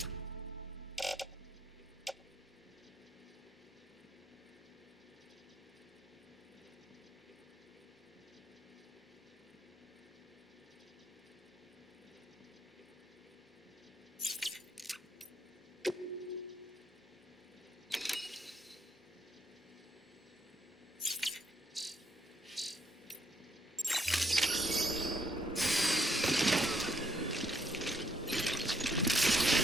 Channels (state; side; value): normal; both; correlation 0.72